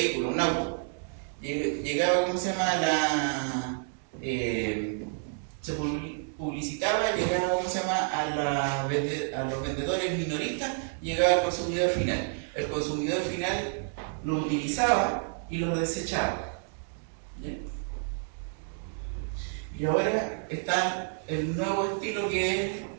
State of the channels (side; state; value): left; silent; 58 dB below the other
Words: un auto, llegaba, se publicitaba, llegaba, a los vendedores minoristas, llegaba al consumidor final. El consumidor final lo utilizaba y lo desechaba. ¿Ya? Y ahora está el nuevo estilo, que es